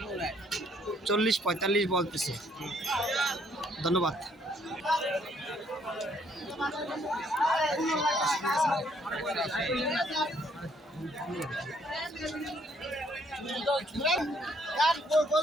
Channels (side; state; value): both; normal; correlation 0.67